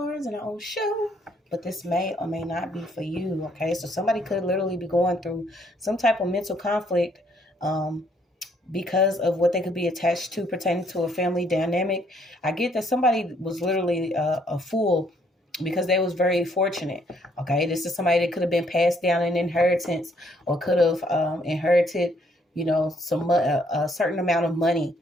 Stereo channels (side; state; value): both; normal; correlation 0.67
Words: in our own show, but this may or may not be for you, okay? So somebody could literally be going through some type of mental conflict because of what they could be attached to pertaining to a family dynamic. I get that somebody was literally a fool because they was very fortunate, okay? This is somebody that could have been passed down in inheritance or could have inherited, a certain amount of money,